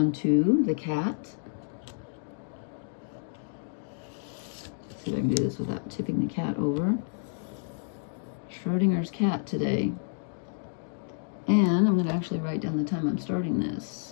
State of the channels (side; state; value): right; silent; digital silence